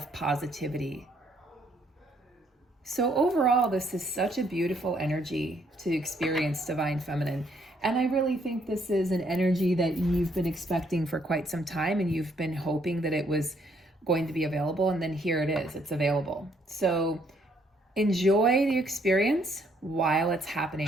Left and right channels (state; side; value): normal; both; correlation 0.69